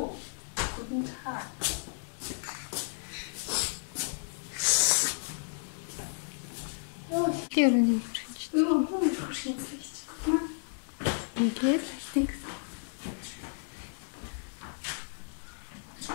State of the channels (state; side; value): silent; right; digital silence